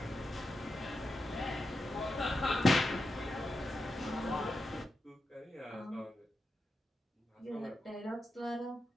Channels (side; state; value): both; normal; correlation 0.88